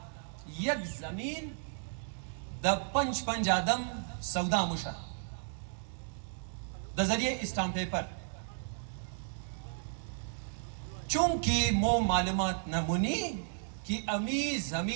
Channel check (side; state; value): left; silent; digital silence